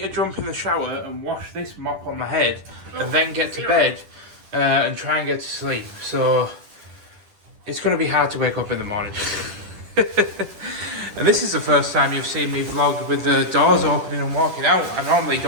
to jump in the shower and wash this mop on my head, and then get to bed and try and get to sleep. So it's going to be hard to wake up in the morning. And this is the first time you've seen me vlog with the doors opening and walking out. I normally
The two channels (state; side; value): late; left; 10 ms